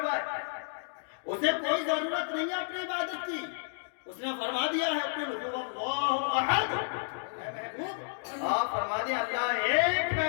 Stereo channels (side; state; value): right; silent; digital silence